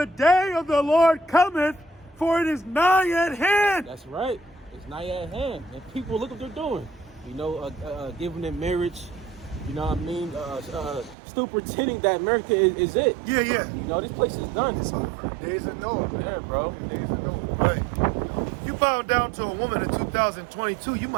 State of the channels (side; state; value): left; drops out; at 11.2 s